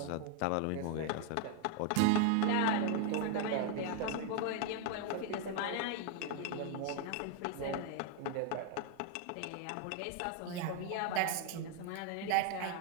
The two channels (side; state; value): both; different; correlation 0.01